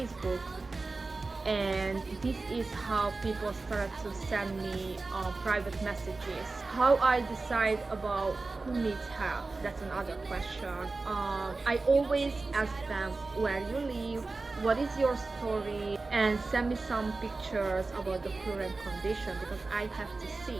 and this is how people started to send me private messages. How I decide about who needs help, that's another question. I always ask them where you live, what is your story, and send me some pictures about the current condition, because I have to see.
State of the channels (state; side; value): quieter; left; 3.6 dB